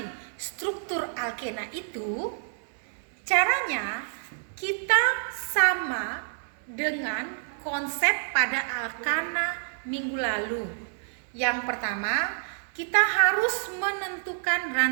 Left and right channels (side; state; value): left; silent; 59 dB below the other